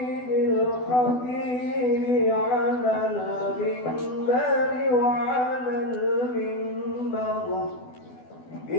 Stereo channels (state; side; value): late; right; 12 ms